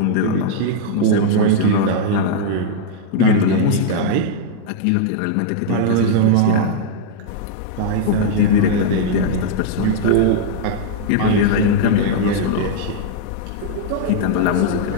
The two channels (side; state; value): both; different; correlation -0.02